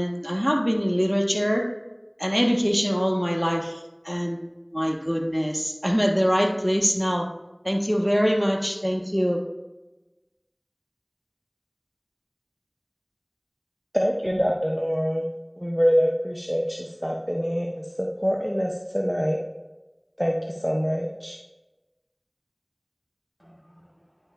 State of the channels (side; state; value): both; identical; correlation 1.00